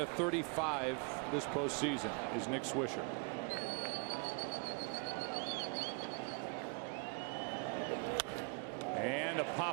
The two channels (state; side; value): quieter; left; 34.0 dB